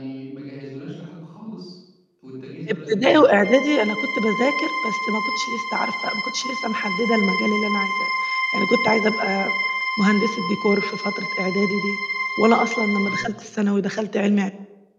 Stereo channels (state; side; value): identical; both; correlation 1.00